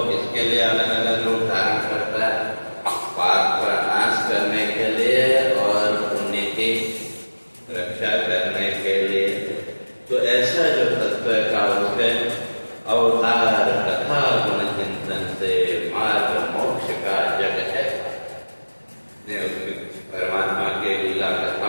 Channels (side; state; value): both; inverted; correlation -1.00